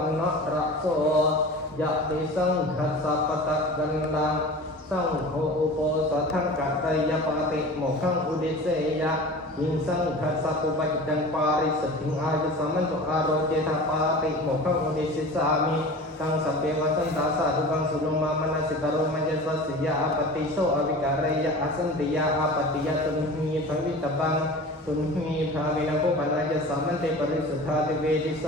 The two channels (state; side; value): normal; both; correlation 0.37